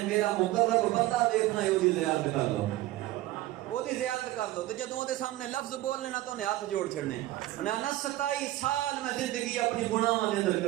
میرا مقرب بندہ دیکھنا ہے وہ دی زیارت کر لو وہ دی زیارت کر لو، تے جدوں دے سامنے لفظ بولنے نا تو انہیں ہاتھ جوڑ چھڑنے. انہیں نا 27 سال میں زندگی اپنی گناہاں دے اندر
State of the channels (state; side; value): quieter; left; 16.4 dB